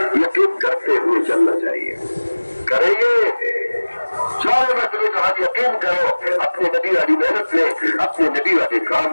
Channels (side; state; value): both; inverted; correlation -1.00